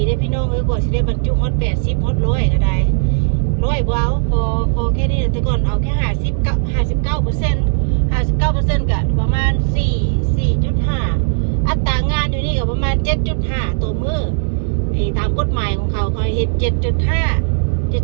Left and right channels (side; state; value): left; silent; digital silence